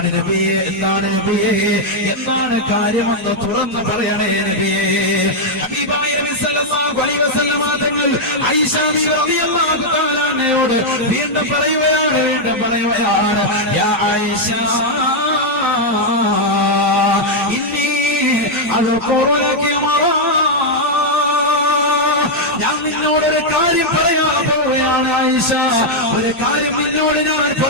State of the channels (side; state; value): both; normal; correlation -0.02